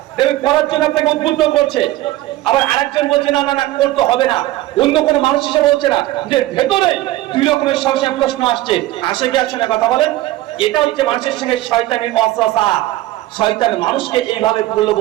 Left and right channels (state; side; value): quieter; left; 16.3 dB